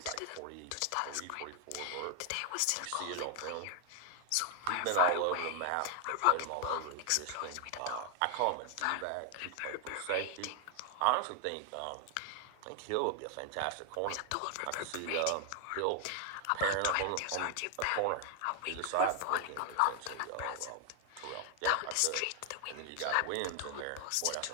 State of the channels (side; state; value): both; different; correlation 0.00